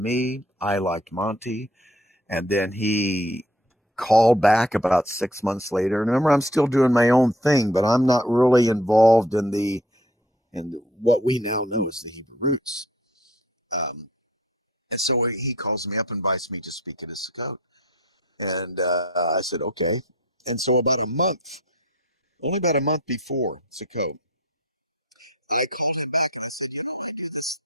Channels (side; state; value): both; normal; correlation 0.54